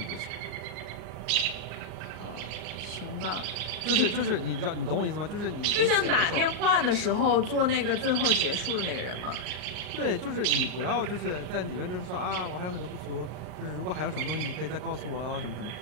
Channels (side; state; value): left; late; 39 ms